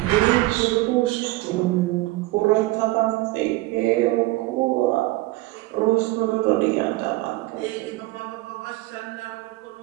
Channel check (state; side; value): quieter; left; 19.6 dB